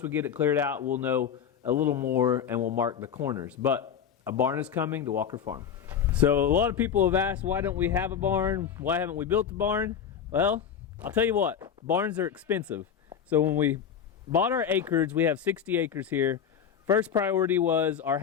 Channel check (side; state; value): right; quieter; 8.0 dB